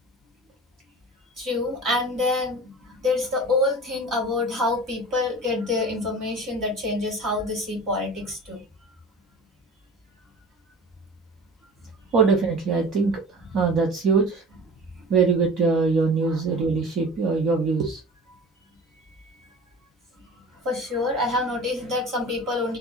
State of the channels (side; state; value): both; normal; correlation 0.38